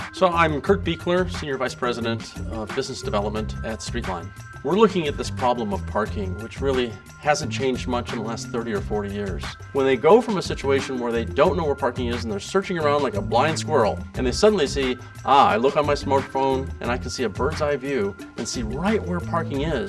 So I'm Kurt Buechler, Senior Vice President of Business Development at StreetLine. We're looking at this problem of parking, which really hasn't changed much in the last 30 or 40 years. When they go from a situation where they don't know where parking is and they're searching around like a blind squirrel, and they suddenly see, I look on my smartphone and I can see a bird's eye view and see right where parking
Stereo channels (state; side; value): identical; both; correlation 1.00